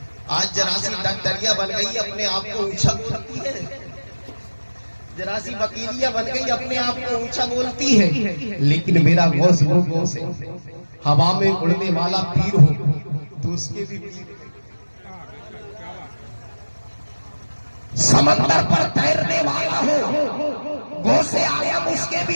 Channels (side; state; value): both; inverted; correlation -1.00